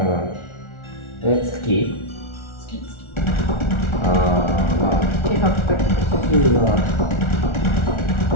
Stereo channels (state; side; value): late; right; 1.4 ms